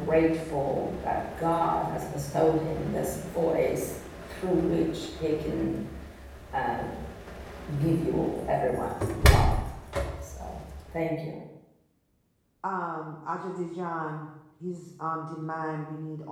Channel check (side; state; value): both; identical; correlation 1.00